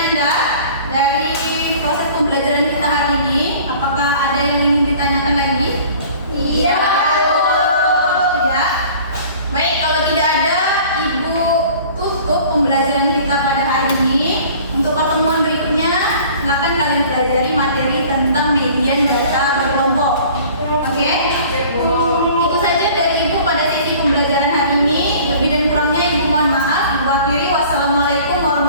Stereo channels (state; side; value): inverted; both; correlation -0.48